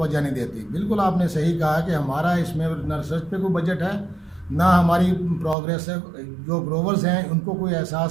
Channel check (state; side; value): drops out; left; at 5.6 s